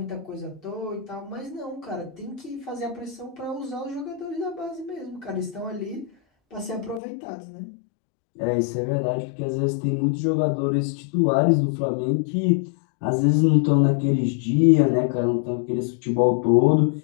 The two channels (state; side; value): drops out; right; at 7.0 s